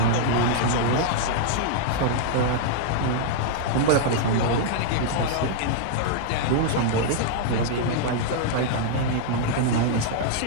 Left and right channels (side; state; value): both; different; correlation -0.01